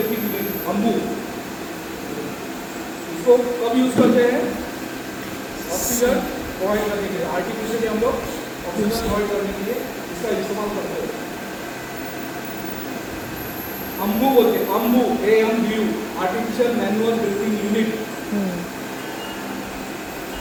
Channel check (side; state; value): both; identical; correlation 1.00